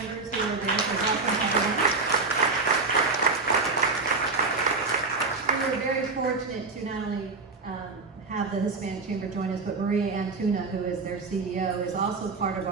who are there. So welcome everyone. We were very fortunate to not only have the Hispanic Chamber join us, but Maria Antuna, who is their CEO, is also part of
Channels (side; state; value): left; quieter; 4.0 dB